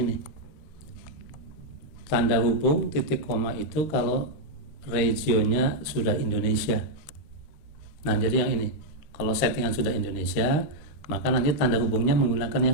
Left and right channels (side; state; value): right; late; 13 ms